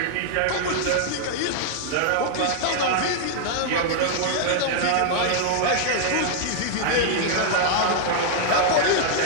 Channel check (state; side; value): different; both; correlation -0.01